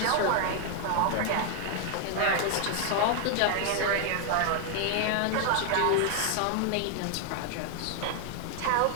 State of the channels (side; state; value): both; different; correlation 0.00